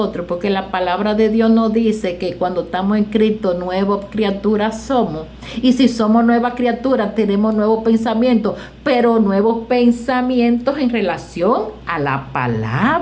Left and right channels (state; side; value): identical; both; correlation 1.00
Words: porque la palabra de Dios nos dice que cuando estamos en Cristo, nuevas criaturas somos. Y si somos nuevas criaturas, tenemos nuevos pensamientos, pero nuevos pensamientos en relación a la